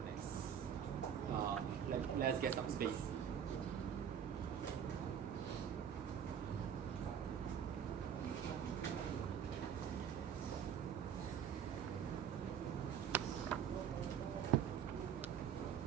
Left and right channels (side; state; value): left; quieter; 8.4 dB